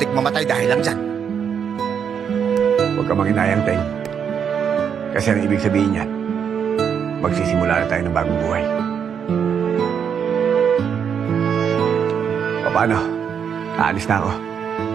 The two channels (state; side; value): quieter; left; 7.5 dB